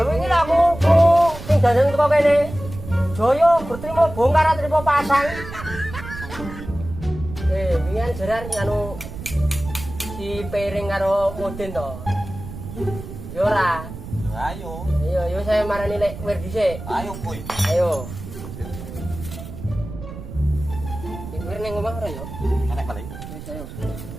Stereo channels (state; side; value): noise; right; rumble, 11 dB below the sound